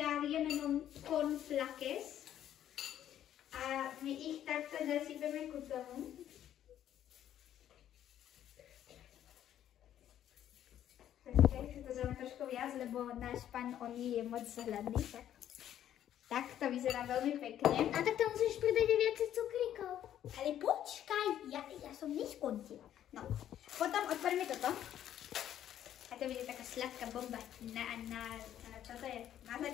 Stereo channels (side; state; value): right; quieter; 11.0 dB